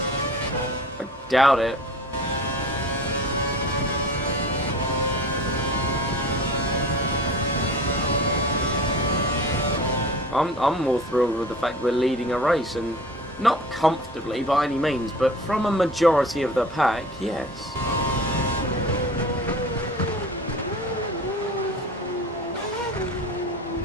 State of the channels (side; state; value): both; normal; correlation 0.39